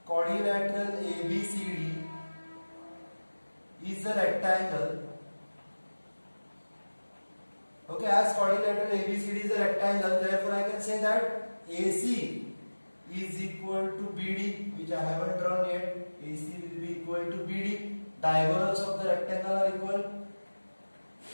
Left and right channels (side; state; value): both; inverted; correlation -1.00